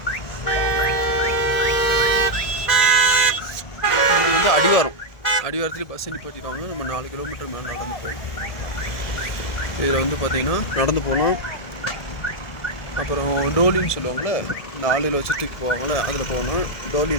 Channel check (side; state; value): right; late; 1.7 ms